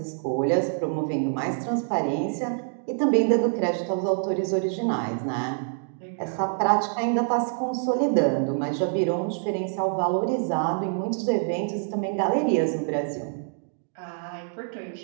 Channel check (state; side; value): silent; left; digital silence